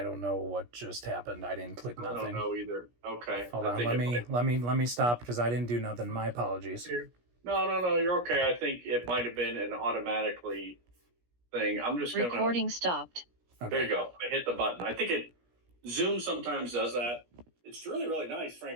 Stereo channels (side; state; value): left; late; 17 ms